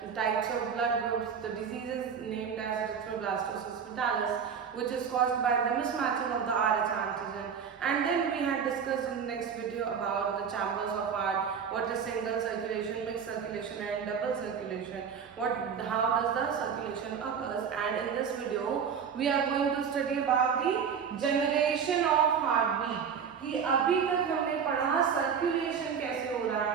types of blood groups, the diseases named as erythroblastosis fetalis, which is caused by the mismatching of the Rh antigen, and then we had discussed in the next video about the chambers of heart, what is single circulation, mixed circulation and double circulation, how does the circulation occurs, and in this video we are going to study about the generation of heartbeat कि अभी तक हमने पढ़ा circulation कैसे हो रहा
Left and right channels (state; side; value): quieter; left; 6.9 dB